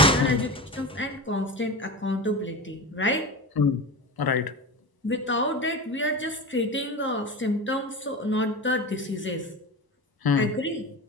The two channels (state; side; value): normal; both; correlation 0.27